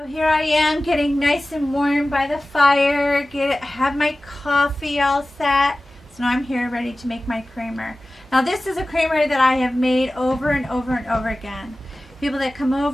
here I am getting nice and warm by the fire, have my coffee all set. So now I'm here ready to make my creamer. Now this is a creamer that I have made over and over and over again. People that come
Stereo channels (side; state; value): both; normal; correlation 0.96